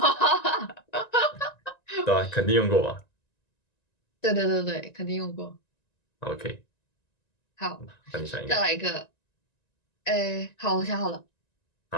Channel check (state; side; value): late; right; 1.9 ms